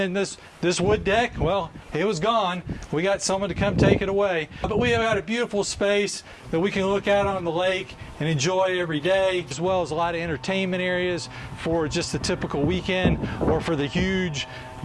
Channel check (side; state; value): both; identical; correlation 1.00